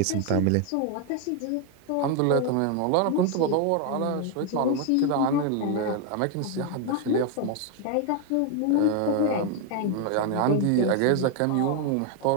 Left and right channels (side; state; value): both; different; correlation 0.01